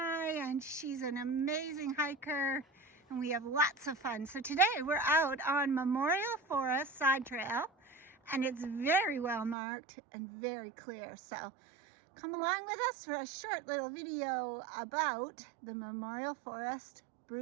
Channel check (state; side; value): drops out; left; at 9.6 s